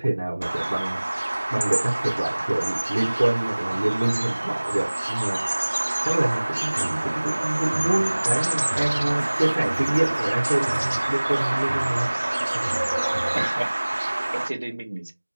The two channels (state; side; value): inverted; both; correlation -1.00